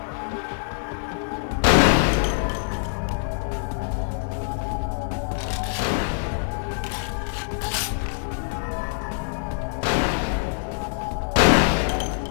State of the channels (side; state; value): right; silent; digital silence